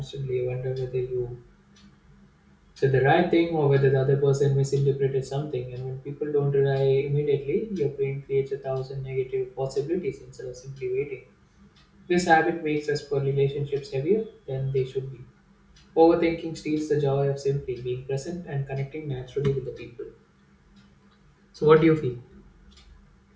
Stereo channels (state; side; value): identical; both; correlation 1.00